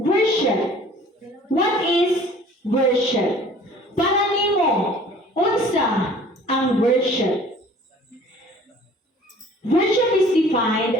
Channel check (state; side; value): normal; both; correlation 0.50